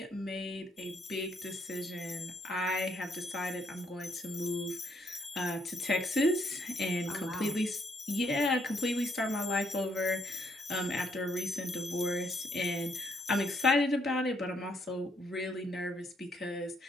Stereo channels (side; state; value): both; normal; correlation 0.71